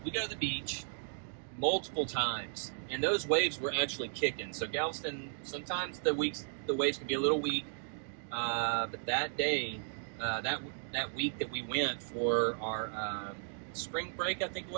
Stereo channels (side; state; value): left; silent; digital silence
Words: we go to the beach multiple times. And those waves were actually kicking. So Galveston, sometimes the waves can be a little weak. But that day, that week that we went for our spring break, I think it